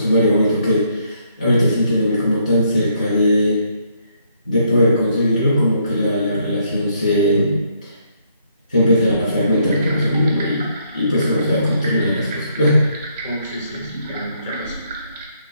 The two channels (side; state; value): both; inverted; correlation -0.71